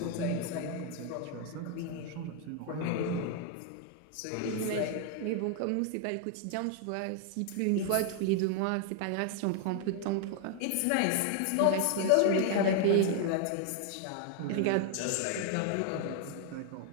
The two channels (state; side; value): different; both; correlation 0.00